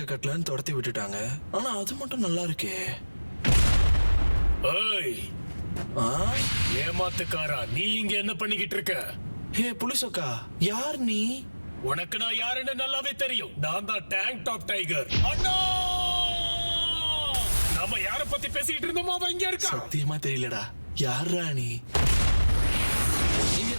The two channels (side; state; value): both; inverted; correlation -1.00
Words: கட்டலன்னு துரத்தி விட்டுட்டாங்க. ஆனா அது மட்டும் நல்லா இருக்கே. ஏய், ஏமாத்துக்காரா, நீ இங்க என்ன பண்ணிக்கிட்டு இருக்க? ஹே புலிசோக்கா, யார் நீ? உனக்கு நான் யாருன்னு நல்லாவே தெரியும். நான் தான் டேங்க் டாப் டைகர். அண்ணா, நம்ம யார பத்தி பேசிக்கிட்டு இருந்தோமோ அவன் இங்க இருக்கா. சத்தியமா தெரியலடா. யாரா நீ? நீ